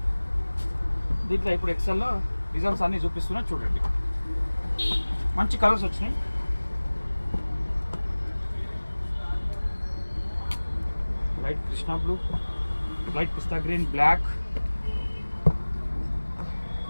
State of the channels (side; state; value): both; inverted; correlation -1.00